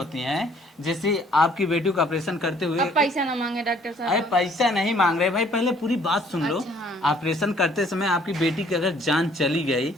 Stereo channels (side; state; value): both; normal; correlation 0.60